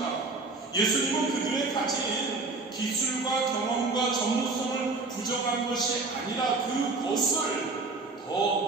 예수님은 그들의 가진 기술과 경험과 전문성을 부정한 것이 아니라 그것을 더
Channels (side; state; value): left; quieter; 3.7 dB